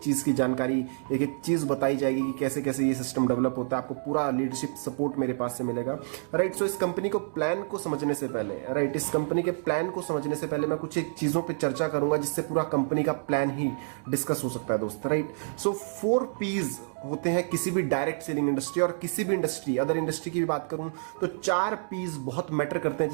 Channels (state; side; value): silent; left; digital silence